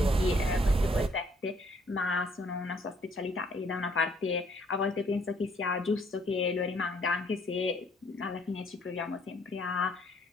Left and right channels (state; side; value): normal; both; correlation 0.64